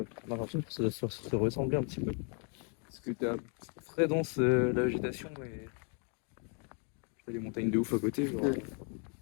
On a l'impression que ça doit se ressembler un petit peu. Parce que t'as très dense la végétation et t'as des montagnes de ouf à côté. Genre.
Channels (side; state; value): right; quieter; 39.5 dB